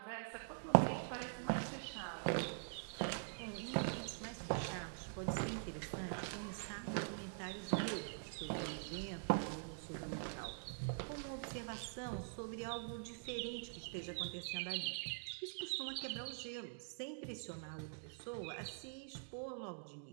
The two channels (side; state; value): left; silent; digital silence